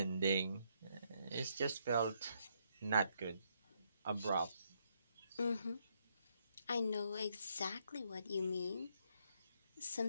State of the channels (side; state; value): both; inverted; correlation -0.75